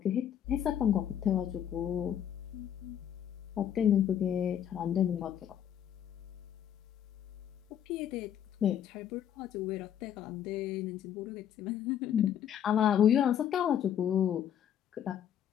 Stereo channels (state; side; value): quieter; right; 9.7 dB